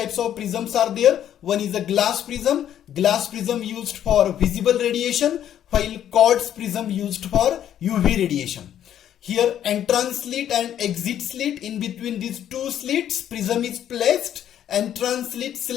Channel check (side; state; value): right; quieter; 10.5 dB